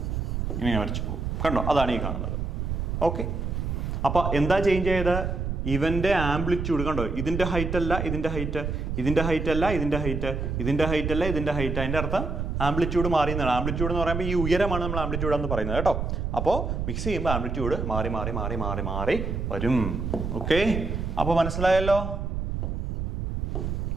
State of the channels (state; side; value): noise; right; rumble, 2 dB below the sound